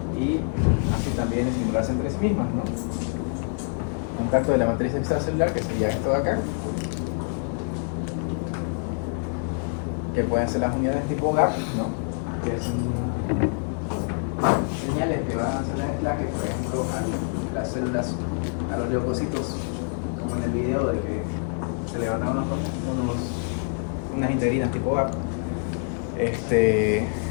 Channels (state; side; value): silent; right; 57 dB below the other